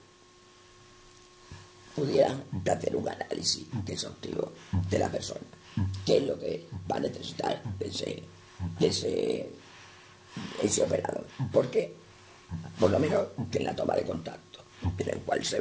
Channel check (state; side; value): identical; both; correlation 1.00